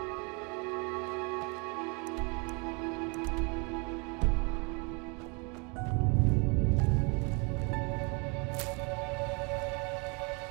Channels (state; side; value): quieter; left; 32.3 dB